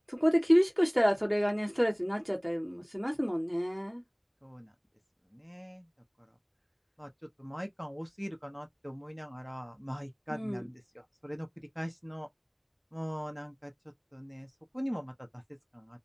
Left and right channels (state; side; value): identical; both; correlation 1.00